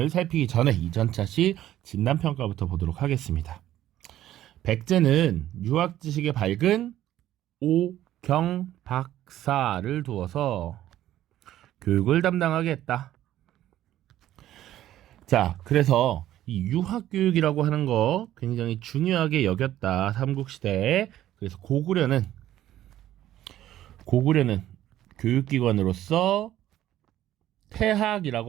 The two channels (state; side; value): quieter; left; 13.0 dB